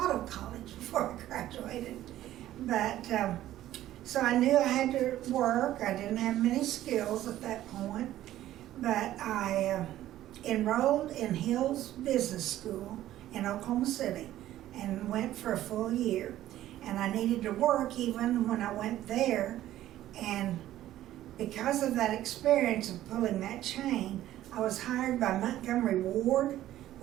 of college before I graduated, but so I knew I had to work. I didn't have many skills at that point, but I enrolled in Hill's Business School in Oklahoma City and went for a full year. And I needed to work even when I went there, and because of that experience of pulling that chain, I was hired by Montgomery Ward,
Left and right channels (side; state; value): left; quieter; 13.6 dB